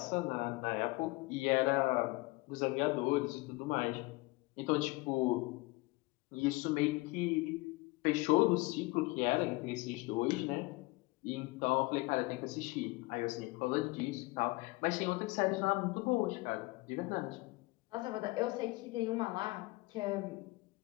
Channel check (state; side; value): quieter; right; 23.1 dB